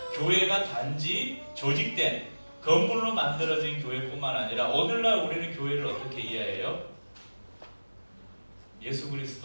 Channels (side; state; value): both; inverted; correlation -1.00